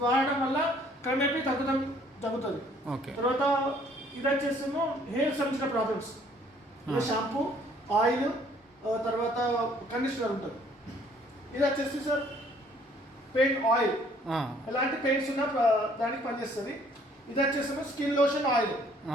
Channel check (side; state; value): both; normal; correlation 0.60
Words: వాడడం వల్ల క్రమేపీ తగ్గుతుంది. తర్వాత ఇది వచ్చేసేమో హెయిర్ సంబంధించిన ప్రాబ్లమ్స్, షాంపూ, ఆయిల్, తర్వాత కండిషనర్ ఉంటుంది. ఇది వచ్చేసి సార్ పెయిన్ ఆయిల్, ఎలాంటి పెయిన్స్ ఉన్నా దానికి పనిచేస్తుంది. ఇది వచ్చేసి skin lotion oil,